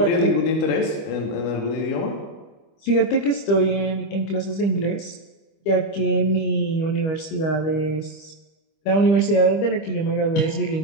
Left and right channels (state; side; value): late; right; 25 ms